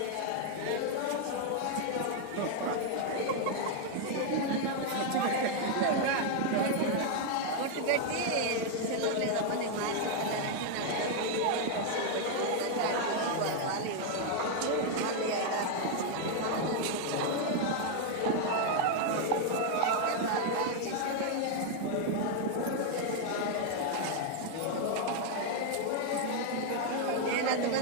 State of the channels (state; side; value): different; both; correlation 0.00